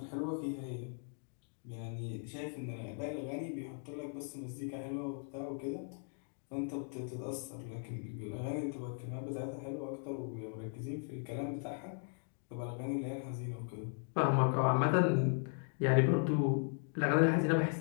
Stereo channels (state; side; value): silent; right; 53 dB below the other